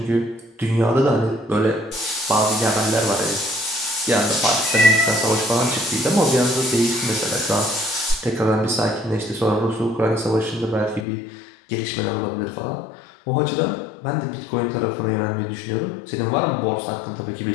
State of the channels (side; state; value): right; drops out; at 11.1 s